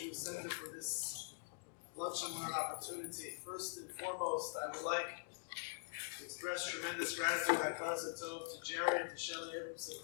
Center for this lunch and learn opportunity. First and foremost, I would like to express tremendous gratitude to Jerry and to Shelly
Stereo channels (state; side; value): silent; right; digital silence